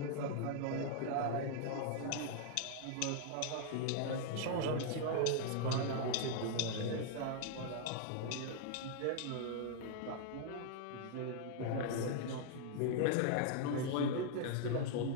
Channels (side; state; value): both; different; correlation -0.01